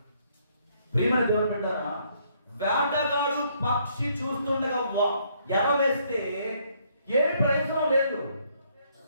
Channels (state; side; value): inverted; both; correlation -0.68